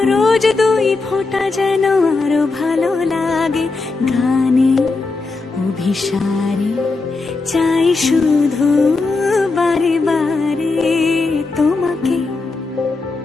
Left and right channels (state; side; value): quieter; right; 3.8 dB